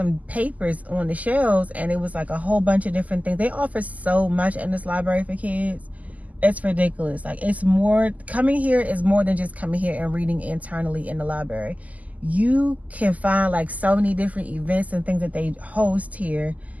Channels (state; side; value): late; left; 0.076 ms